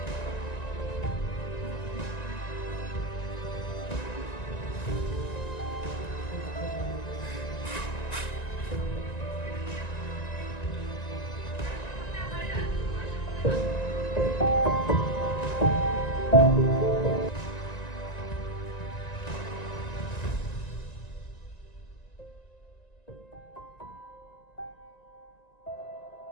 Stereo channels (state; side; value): late; right; 1.9 ms